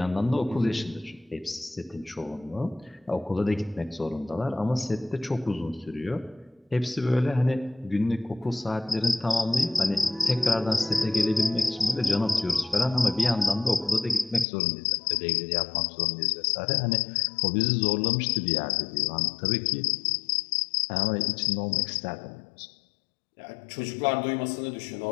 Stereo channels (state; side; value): drops out; right; at 14.5 s